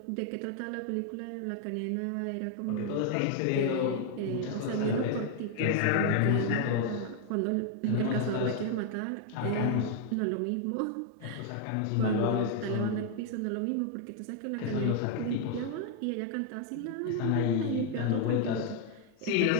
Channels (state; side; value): different; both; correlation 0.00